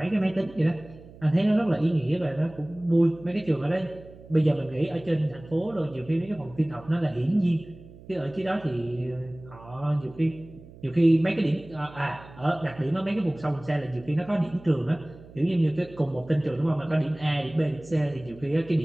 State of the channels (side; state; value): right; noise; hum, 20 dB below the sound